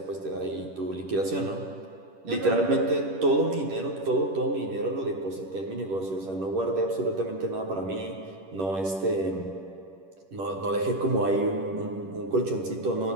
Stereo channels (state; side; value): late; left; 10 ms